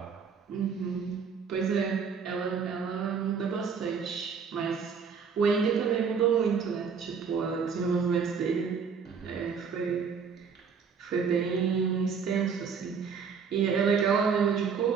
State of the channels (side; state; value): left; quieter; 6.1 dB